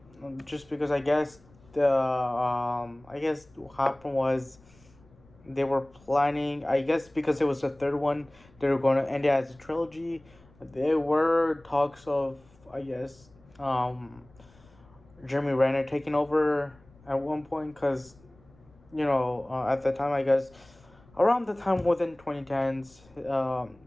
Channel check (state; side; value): noise; left; rumble, 27 dB below the sound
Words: just because I guess what happened was they were planning. I guess because it was the third one, they were going to end it as a trilogy. There were talks of, Jeremy Renner taking over at one point, because at the time, I guess around the time within 2010s,